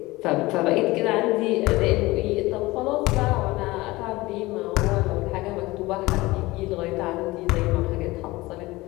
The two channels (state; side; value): quieter; right; 20.3 dB